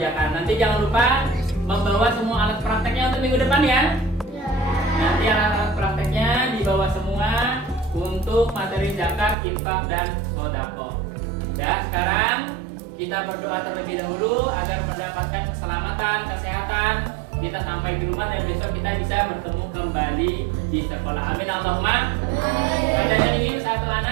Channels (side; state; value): left; drops out; at 9.3 s